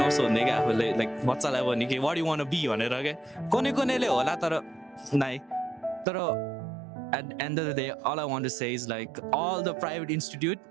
क्या आफूले लाइक बच्चालाई भने कि वाट यु वान बी भनेर क्या कुनैले होला तर नाइ तर at the end of the day all I want to say is like all the private institute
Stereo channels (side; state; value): left; drops out; at 6.1 s